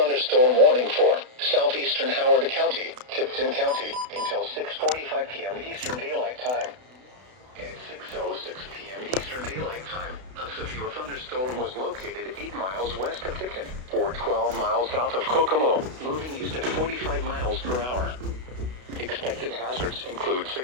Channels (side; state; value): left; late; 32 ms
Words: warning for southeastern Howard County, Tipton County, until 6:45 p.m. Eastern Daylight Time. At 6:06 p.m. Eastern Daylight Time, a severe thunderstorm was located 8 miles west of Tipton, or 12 miles south of Kokomo, moving east at 45 miles per hour. Expected hazards include